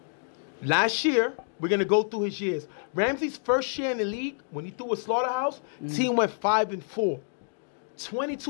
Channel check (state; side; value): silent; right; digital silence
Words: last year, we're going to go through his years. Ramsey's first year in the league, when he threw with Slaughterhouse, team went 5-4.